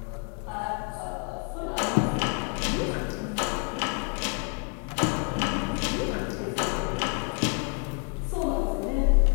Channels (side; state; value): right; quieter; 37.5 dB